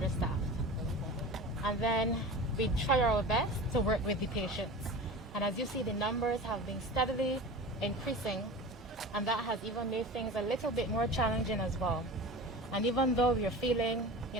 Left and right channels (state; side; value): normal; both; correlation 0.34